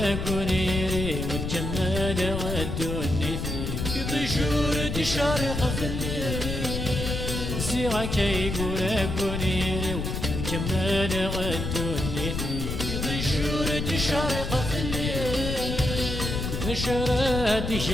قونيري وتجمل غدوني في طيشور دي شارق في الليل سيغا كي قورا قونيري وتجمل غدوني في طيشور دي شارق في الليل نشرة دي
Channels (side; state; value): left; noise; rumble, 3 dB below the sound